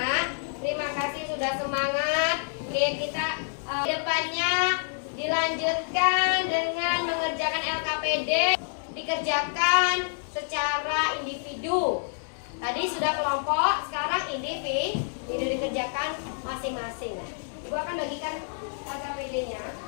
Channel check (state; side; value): silent; right; digital silence